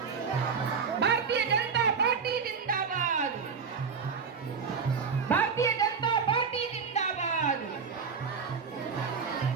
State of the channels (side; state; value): left; quieter; 5.8 dB